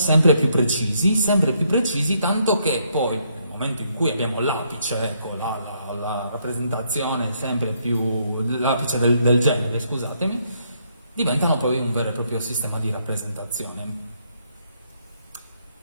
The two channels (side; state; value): both; inverted; correlation -0.73